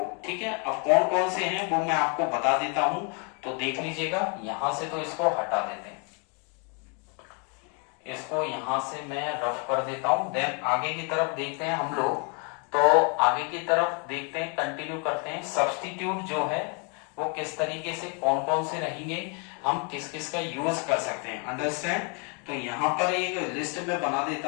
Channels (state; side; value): quieter; right; 36.3 dB